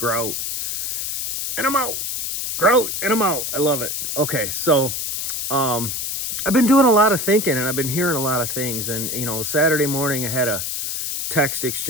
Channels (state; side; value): noise; left; hiss, 3 dB below the sound